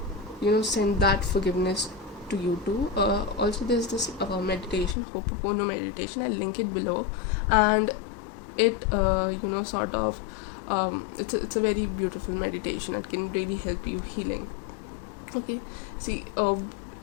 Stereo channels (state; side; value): drops out; right; at 5.0 s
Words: send that forgiveness to you too. Also, there's this meditation, Ho'oponopono meditation. I'll link it below, and it sort of it's a very beautiful meditation. It can really help you healing. Okay, see,